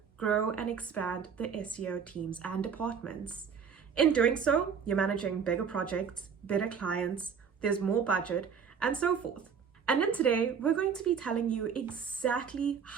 grow and expand the SEO teams and departments. In doing so, you're managing bigger projects, better clients, there's more budget, and so forth. And then today, we're going to be telling you exactly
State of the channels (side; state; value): left; quieter; 6.7 dB